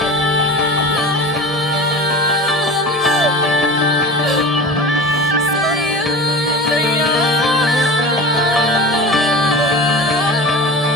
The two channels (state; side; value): normal; both; correlation 0.33